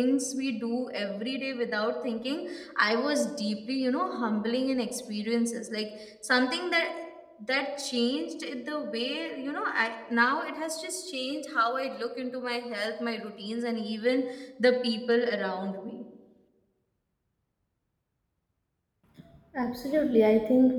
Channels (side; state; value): both; identical; correlation 1.00